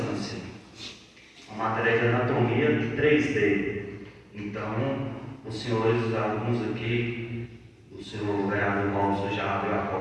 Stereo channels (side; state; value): both; identical; correlation 1.00